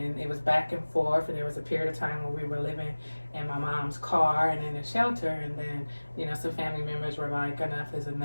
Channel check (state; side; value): inverted; both; correlation -1.00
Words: it was back and forth. And there was a period of time where we were living in my mom's car and in a shelter. And then, some family members were like, enough is